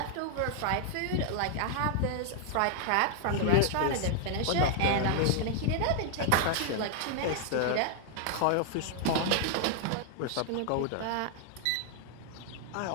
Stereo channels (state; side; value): different; both; correlation 0.00